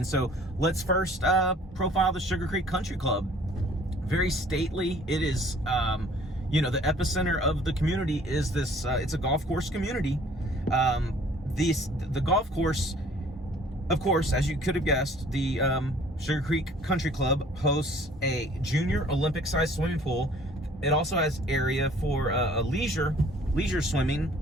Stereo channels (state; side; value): normal; both; correlation 0.55